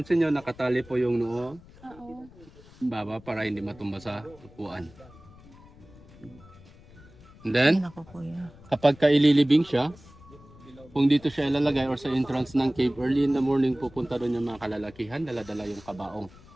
nyo, nakatali po yung noo Oo. baba para hindi matumba sa upuan. And then, Ay, naku kuya. kapag kaililibing siya, kung dito siya ilalagay or sa entrance ng cave, early in the morning pupunta doon yung mga kalalakihan, dala-dala yung kabaong.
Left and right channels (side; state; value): left; noise; rumble, 22 dB below the sound